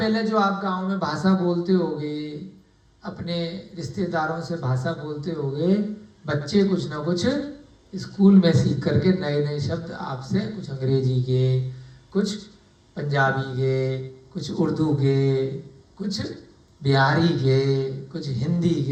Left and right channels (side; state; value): both; identical; correlation 1.00